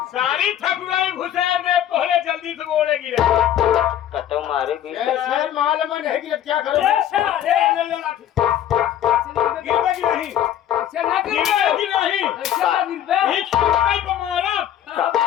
सारी ठकुराई घुसे में पहले जल्दी से गोड़े गिरे। कतो मारे भी ऐसे माल में नहीं गिरे, क्या करो? गिरबे की नहीं, गिरबे की नहीं,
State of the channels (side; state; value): right; quieter; 11.0 dB